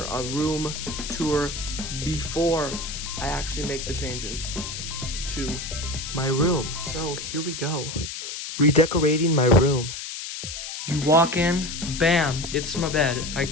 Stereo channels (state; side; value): noise; left; hiss, 7 dB below the sound